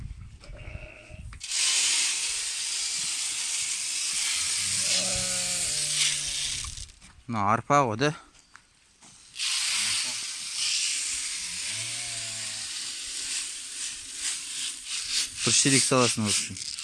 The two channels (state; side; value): identical; both; correlation 1.00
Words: Мына арпа ғой да. Бір шелек саласың осы.